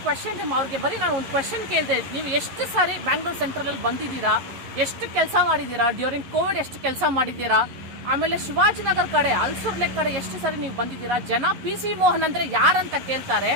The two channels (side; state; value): left; late; 11 ms